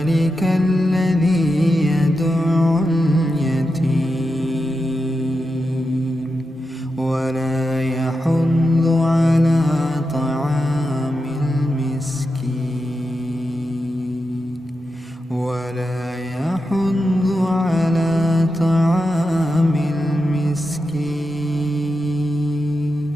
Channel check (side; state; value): both; normal; correlation 0.89